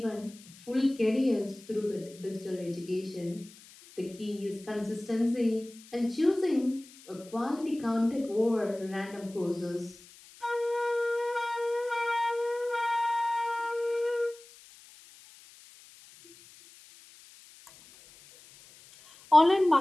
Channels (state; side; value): noise; left; hiss, 22 dB below the sound